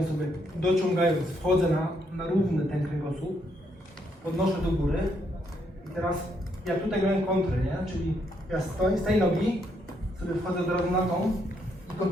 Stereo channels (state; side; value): normal; both; correlation 0.74